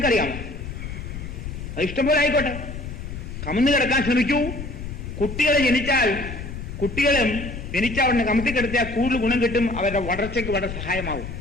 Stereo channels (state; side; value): noise; left; rumble, 8 dB below the sound